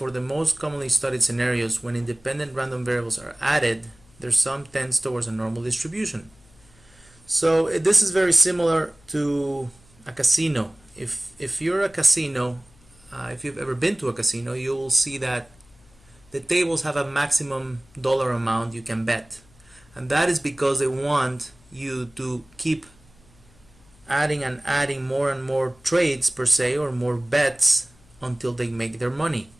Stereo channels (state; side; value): noise; left; hum, 28 dB below the sound